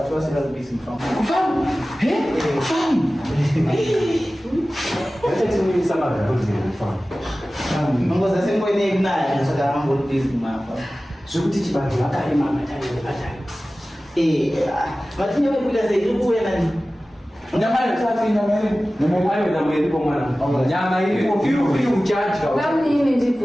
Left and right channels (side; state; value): both; normal; correlation 0.96